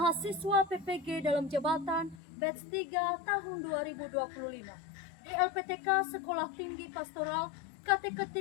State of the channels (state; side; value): drops out; right; at 2.1 s